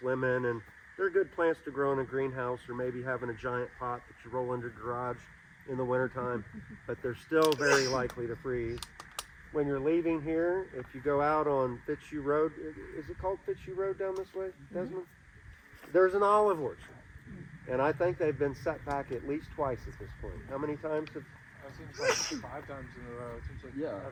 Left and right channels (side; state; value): both; identical; correlation 1.00